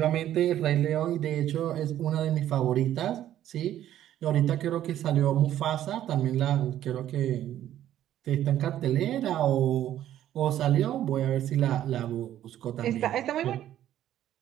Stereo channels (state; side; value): quieter; left; 12.0 dB